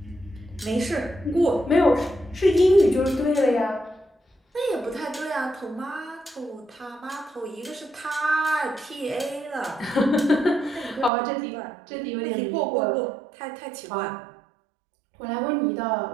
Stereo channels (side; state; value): left; drops out; at 11.1 s